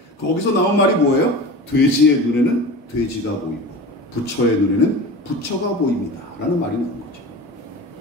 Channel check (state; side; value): normal; both; correlation 0.32